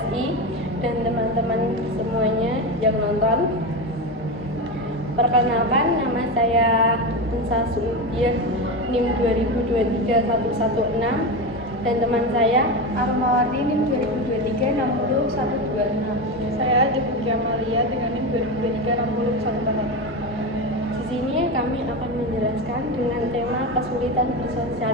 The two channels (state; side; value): normal; both; correlation 0.18